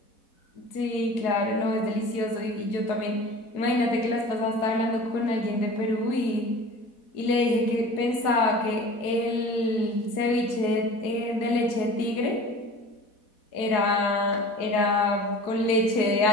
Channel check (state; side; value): late; right; 4.1 ms